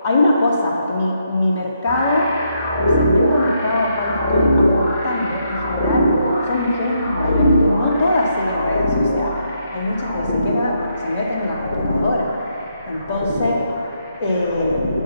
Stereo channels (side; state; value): both; inverted; correlation -0.77